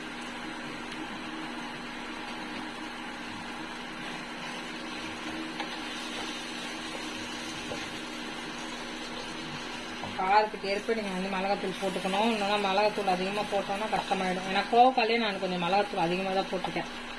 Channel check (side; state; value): both; identical; correlation 1.00